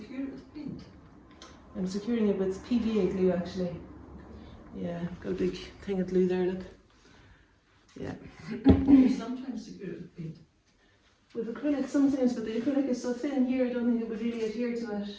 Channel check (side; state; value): both; identical; correlation 1.00